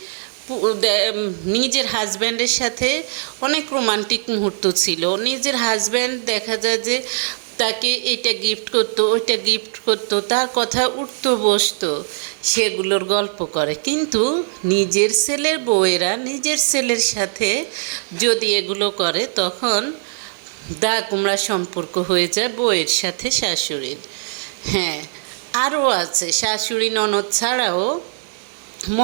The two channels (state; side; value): silent; left; 59 dB below the other